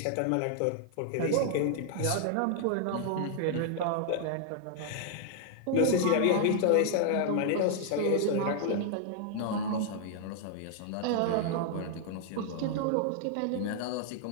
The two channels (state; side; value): different; both; correlation 0.00